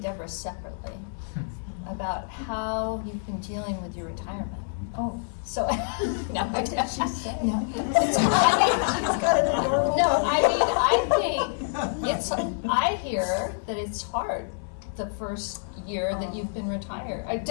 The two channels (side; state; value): right; silent; digital silence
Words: separately about how you've been dealing with your retirement. Oh. So, no, what did she say? No. I hear that it's hard the first year that you've been retired.